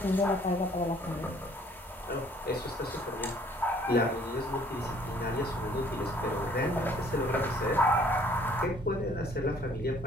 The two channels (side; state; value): both; normal; correlation 0.58